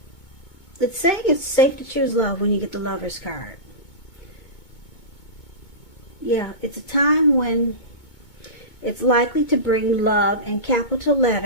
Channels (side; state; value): right; late; 2.2 ms